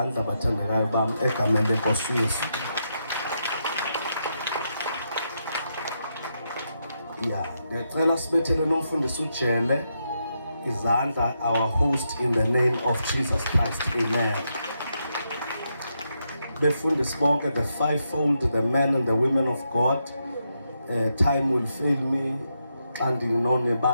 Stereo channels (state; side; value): inverted; both; correlation -0.82